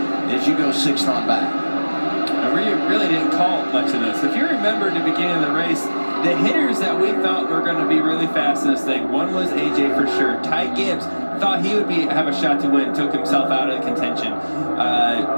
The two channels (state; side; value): inverted; both; correlation -1.00